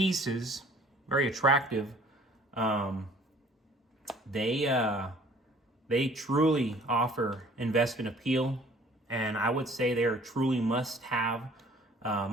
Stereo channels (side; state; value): both; normal; correlation 0.53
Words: very attractive, they truly offer investment appeal, and I would say they are truly must-haves